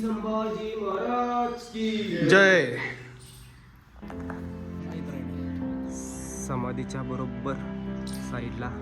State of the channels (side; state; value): both; identical; correlation 1.00